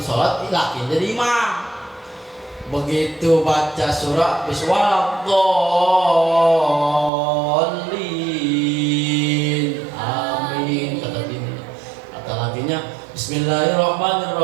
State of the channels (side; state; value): left; drops out; at 7.1 s